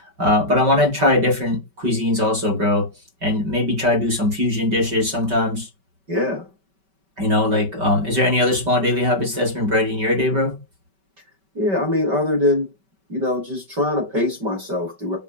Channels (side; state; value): left; late; 5.2 ms